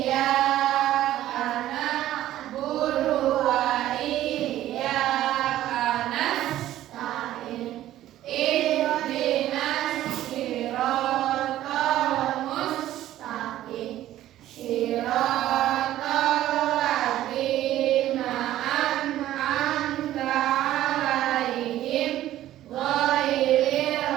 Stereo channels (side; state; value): left; quieter; 13.6 dB